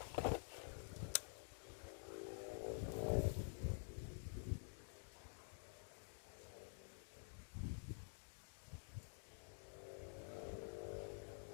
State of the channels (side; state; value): right; silent; digital silence